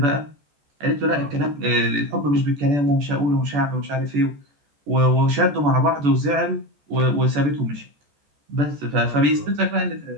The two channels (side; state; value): left; late; 14 ms